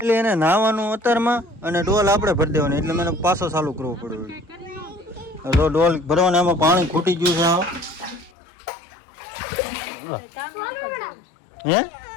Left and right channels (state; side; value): drops out; right; at 8.3 s